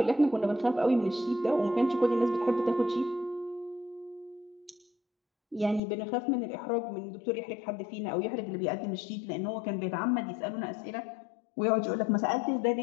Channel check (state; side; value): drops out; right; at 5.8 s